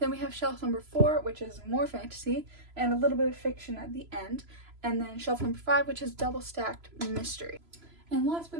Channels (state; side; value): late; left; 3.0 ms